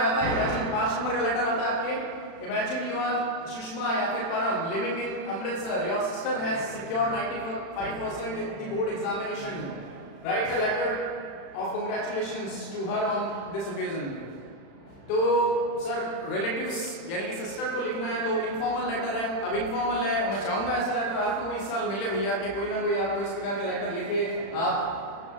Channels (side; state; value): right; late; 35 ms